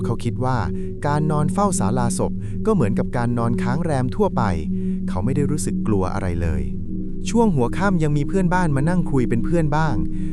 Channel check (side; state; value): both; identical; correlation 1.00